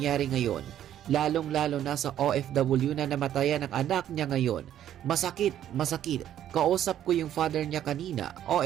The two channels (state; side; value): quieter; left; 11.2 dB